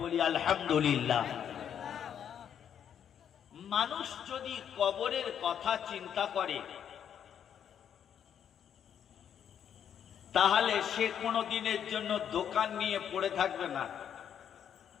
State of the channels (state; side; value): quieter; right; 8.8 dB